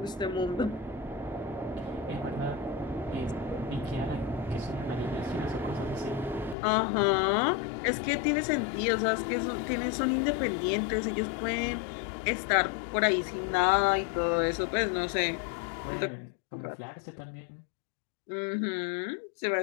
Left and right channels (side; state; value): right; drops out; at 6.6 s